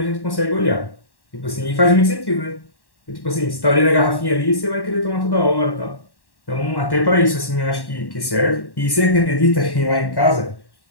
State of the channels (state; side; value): late; right; 1.1 ms